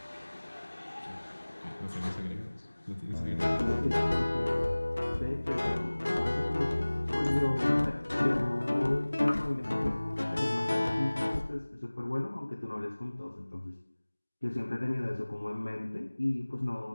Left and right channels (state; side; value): inverted; both; correlation -1.00